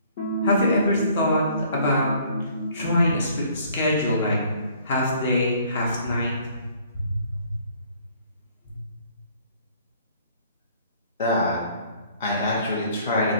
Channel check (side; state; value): both; inverted; correlation -0.59